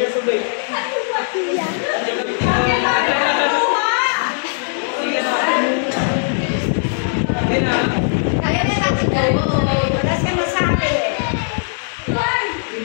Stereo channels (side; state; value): right; silent; digital silence